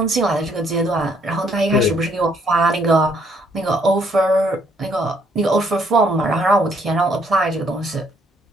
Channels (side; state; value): both; normal; correlation 0.68